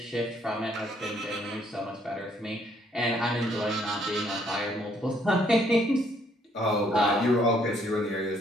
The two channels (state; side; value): normal; both; correlation 0.67